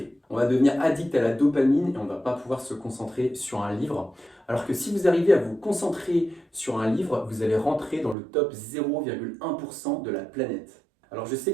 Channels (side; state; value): left; drops out; at 8.2 s